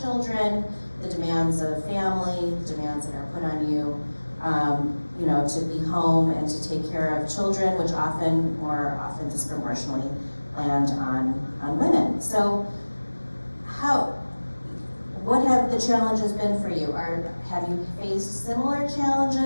children, the demands of family, the demands that are put on you, you know, to be home and to take care of children, which more often disproportionately land on women. So what have the challenges been for you? Have you faced similar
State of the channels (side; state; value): both; inverted; correlation -1.00